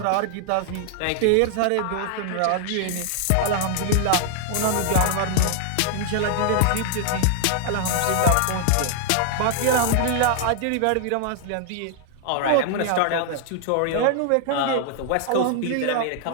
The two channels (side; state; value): both; different; correlation -0.01